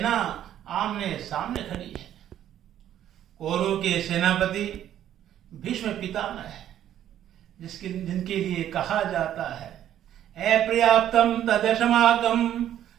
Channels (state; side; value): quieter; left; 11.2 dB